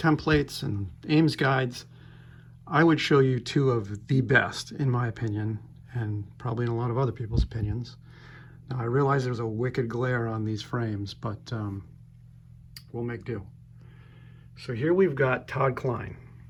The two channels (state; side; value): identical; both; correlation 1.00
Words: and Ames guides, I would show you two of the best, in my opinion, and probably in a lot of other people's opinions. Now, I realize there's a wicked glare on these frames, but we'll make do. So here we've got Todd Klein.